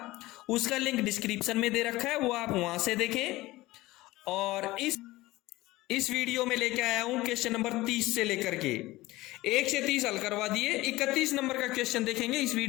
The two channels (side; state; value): right; quieter; 18.8 dB